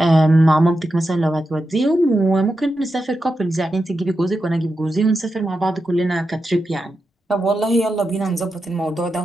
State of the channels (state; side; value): normal; both; correlation 0.88